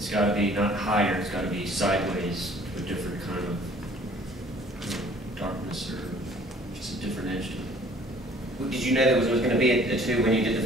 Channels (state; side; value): normal; both; correlation 0.54